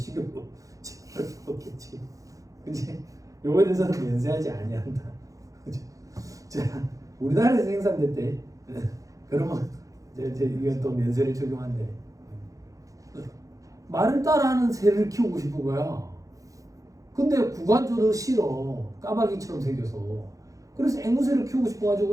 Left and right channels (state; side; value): late; left; 0.16 ms